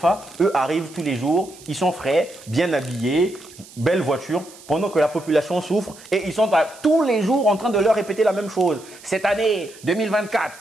Eux arrivent tous les jours, ils sont frais, bien habillés, belle voiture, pendant que la population souffre et ils sont tous les jours en train de leur répéter la même chose. Cette année, 2024,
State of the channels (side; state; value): right; noise; hiss, 21 dB below the sound